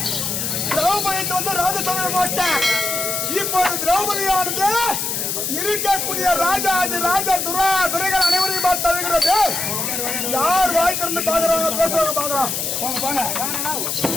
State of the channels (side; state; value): left; noise; hiss, 1 dB below the sound